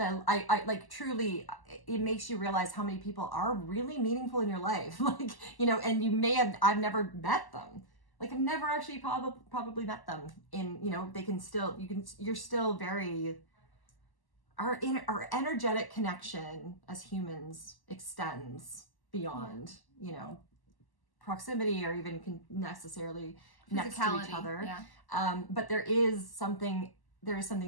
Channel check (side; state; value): right; late; 1.1 ms